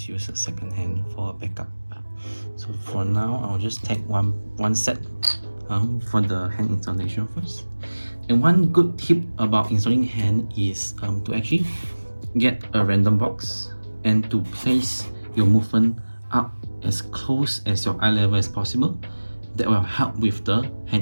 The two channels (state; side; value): inverted; both; correlation -1.00